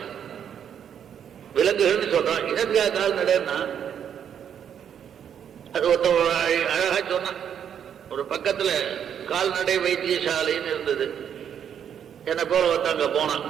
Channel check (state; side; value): quieter; left; 8.6 dB